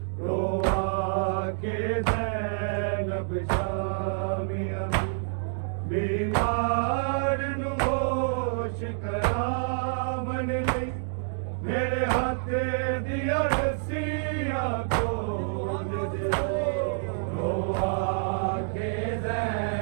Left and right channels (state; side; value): silent; left; digital silence